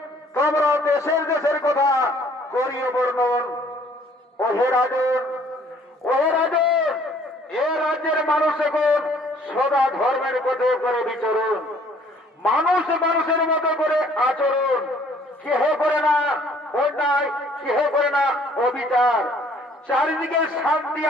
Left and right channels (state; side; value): normal; both; correlation 0.59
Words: তোমরা দেশের দেশের কথা করিয়ে বর্ণন। ওহে রাজন, ওহে রাজন, এ রাজ্যের মানুষ এখন সদা ধর্মের পথে করে বিচরণ, মানুষ মানুষের মতো করে আচরণ, কেহ করে না অন্যায়, কেহ করে না অবিচার, চারিদিকে শান্তি